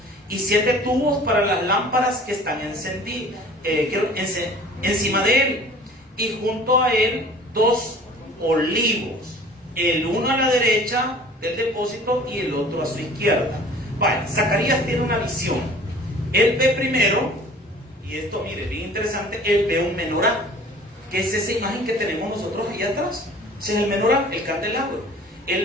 y 7 tubos para las lámparas que están encima de él, y junto a él 2 olivos, el uno a la derecha del depósito y el otro a su izquierda. Vale, Zacarías tiene una visión. Él ve primero, y esto mire, bien interesante, él ve un menorá, que es esa imagen que tenemos nosotros ahí atrás. Ese es el menorá, el candelabro.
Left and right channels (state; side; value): normal; both; correlation 0.47